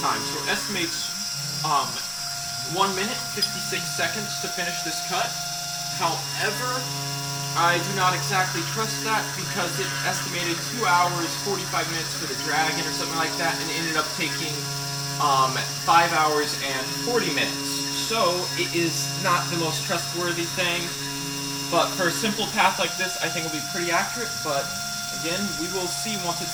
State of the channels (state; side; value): identical; both; correlation 1.00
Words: time. So it estimates 1 minute, 56 seconds to finish this cut. However, I do not exactly trust that because it estimated 2 hours, 45 minutes for the dragon or something like that, and ended up taking 5 hours and 40 minutes. So it is not the most trustworthy thing. But for a simple path like this, I think it'll be pretty accurate, but again, we will see once